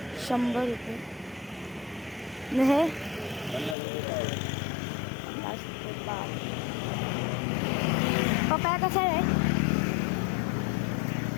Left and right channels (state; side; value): drops out; right; at 3.8 s